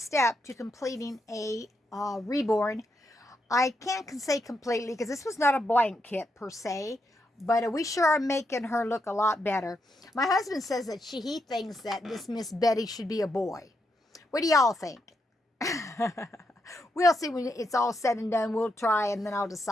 to completing a reborn. I can't say completely because this was not a blank kit per se, but we sure are making her look a lot better. My husband says that he thinks that this Miss Betty should be a boy. What do y'all think? We'll see when it's all said and done. We'll try and then I'll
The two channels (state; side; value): normal; both; correlation 0.81